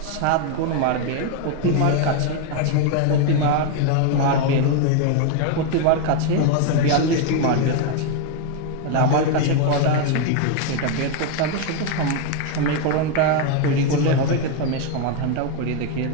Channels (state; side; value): different; both; correlation 0.01